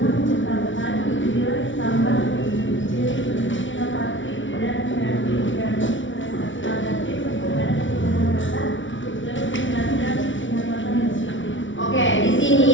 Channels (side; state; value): right; late; 0.56 ms